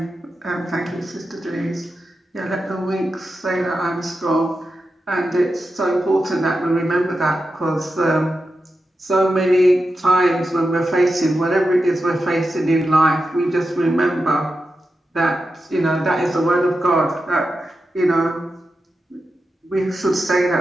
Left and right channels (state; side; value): normal; both; correlation 0.90